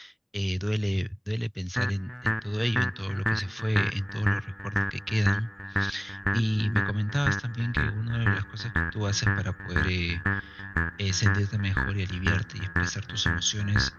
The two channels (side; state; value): both; identical; correlation 1.00